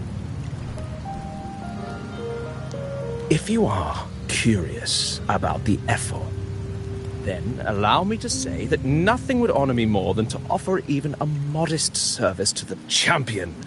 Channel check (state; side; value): identical; both; correlation 1.00